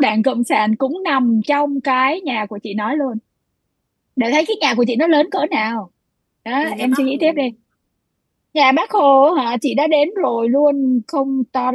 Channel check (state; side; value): identical; both; correlation 1.00